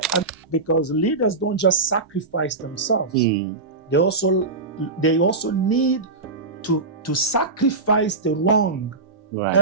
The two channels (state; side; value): quieter; left; 3.7 dB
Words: because leaders don't just sacrifice themselves. They also need to sacrifice the wrong